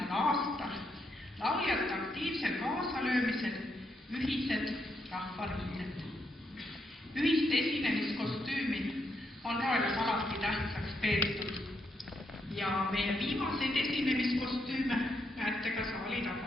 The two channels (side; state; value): both; normal; correlation 0.79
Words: aastal lauljate aktiivsel kaasalöömisel ühised rahvariided. Ühist esinemiskostüümi on Roelas alati tähtsaks peetud ja meie viimaseid esinemiskostüüme näete ka saali